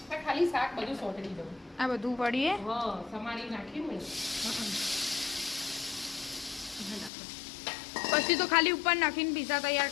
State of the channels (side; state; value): right; drops out; at 7.1 s